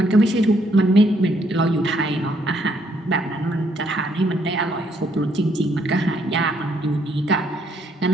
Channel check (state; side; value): normal; both; correlation 0.70